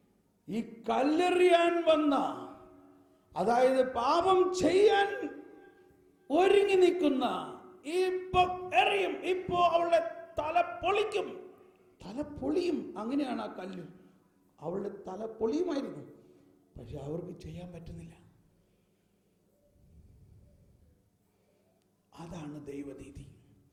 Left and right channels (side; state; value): both; identical; correlation 1.00